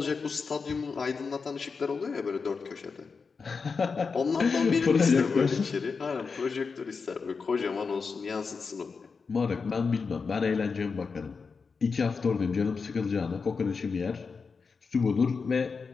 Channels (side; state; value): right; quieter; 5.1 dB